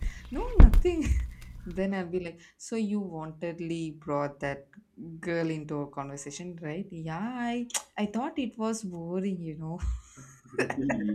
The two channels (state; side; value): identical; both; correlation 1.00